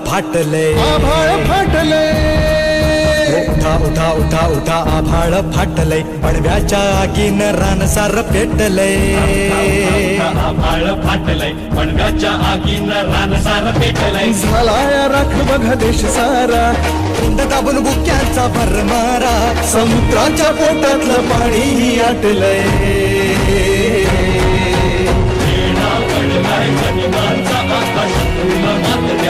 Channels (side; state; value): both; identical; correlation 1.00